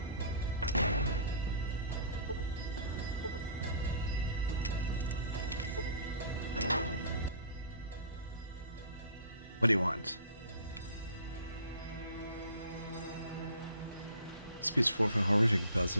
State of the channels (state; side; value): inverted; both; correlation -0.47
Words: What do you want? Speaks forth a horrific buzz.